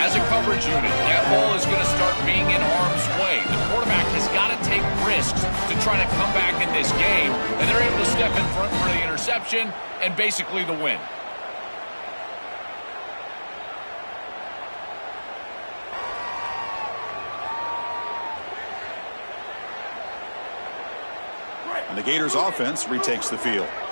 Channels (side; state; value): both; inverted; correlation -1.00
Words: as a coverage unit, that ball is going to start being in harm's way. The quarterback has got to take risks to try to come back in this game, and they're able to step in front for the interception and basically the win. And the Gators offense retakes the field.